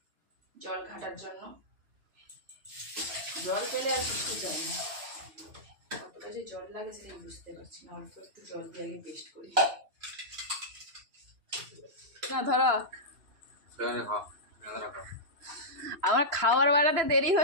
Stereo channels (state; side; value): late; left; 3.0 ms